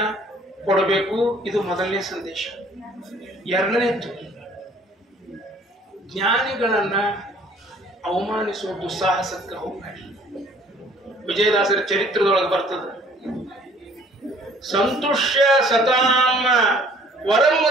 ಕೊಡಬೇಕು. ಇದು ಮೊದಲನೇ ಸಂದೇಶ. ಎರಡನೇದ್ದು, ಜ್ಞಾನಿಗಳನ್ನ ಅವಮಾನಿಸುವ ದುಸ್ಸಾಹಸಕ್ಕೆ ಹೋಗಬೇಡಿ. ವಿಜಯದಾಸರ ಚರಿತ್ರದೊಳಗೆ ಬರ್ತದೆ, ಸಂತುಷ್ಯ ಸತಾಂ ವರಂ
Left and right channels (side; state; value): both; normal; correlation 0.56